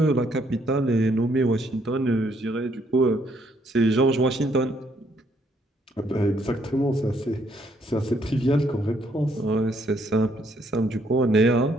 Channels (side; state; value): both; normal; correlation 0.70